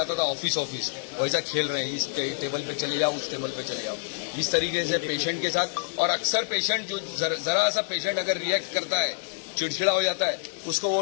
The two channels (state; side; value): silent; right; digital silence